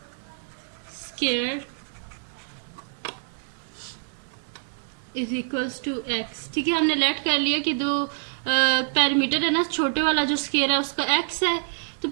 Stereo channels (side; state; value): left; silent; digital silence